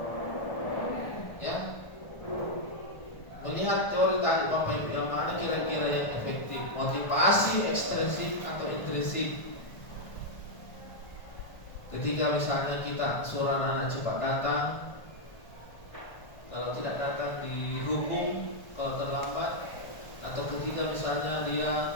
Ya. Melihat teori tadi Bapak Ibu, yang mana kira-kira yang efektif? Motivasi ekstrinsik atau intrinsik? Ketika misalnya kita suruh anak-anak cepat datang, kalau tidak datang dihukum kalau terlambat, atau ketika misalnya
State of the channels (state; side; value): late; right; 1.3 ms